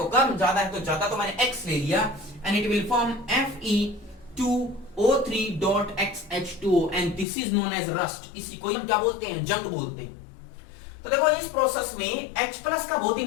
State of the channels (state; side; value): drops out; right; at 7.2 s